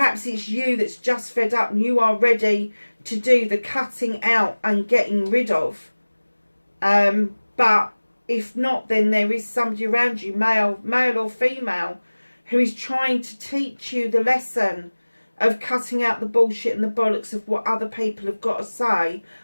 it's you that's just fed up and you are ready to do the cutting out and getting rid of. But if not, then there is somebody around you, male or female, who is trying to teach you the lesson of cutting out the bullshit and the bollocks of what other people have got to say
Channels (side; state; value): both; inverted; correlation -1.00